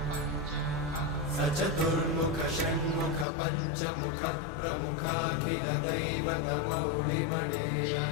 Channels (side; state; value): right; drops out; at 3.2 s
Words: सचतुर्मुख षण्मुख पञ्चमुख प्रमुखाखिल दैवतमौळिमणे